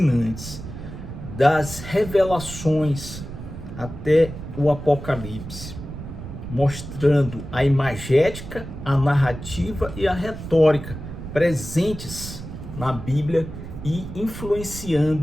das revelações até o Apocalipse, mostrando a imagética, a narrativa e a retórica presentes na Bíblia e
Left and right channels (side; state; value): right; noise; rumble, 10 dB below the sound